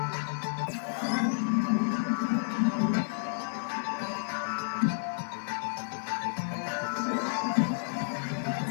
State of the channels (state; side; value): silent; right; digital silence